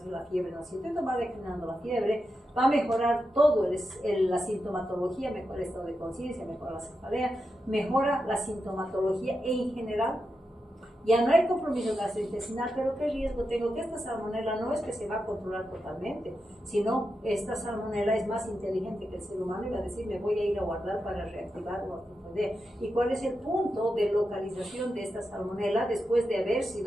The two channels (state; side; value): normal; both; correlation 0.88